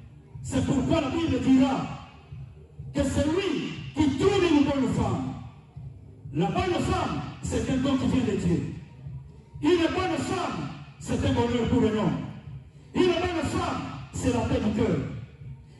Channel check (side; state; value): both; identical; correlation 1.00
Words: C'est pourquoi la Bible dira que celui qui trouve une bonne femme, la bonne femme, c'est un don qui vient de Dieu. Une bonne femme, c'est un bonheur pour un homme. Une bonne femme, c'est la paix du cœur.